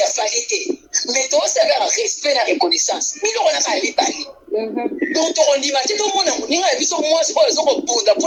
fali te mais toosala respect na reconnaissance biloko naka ya mibali donc tokondima te tomona moninga ya biso mwasi oyo ezokobunda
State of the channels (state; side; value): identical; both; correlation 1.00